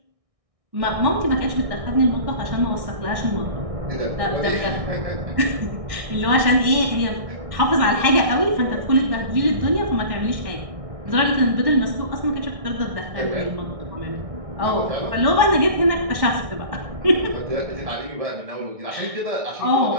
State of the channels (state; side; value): late; left; 1.6 ms